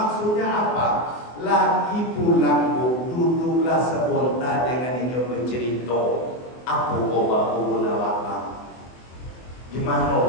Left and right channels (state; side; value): late; right; 24 ms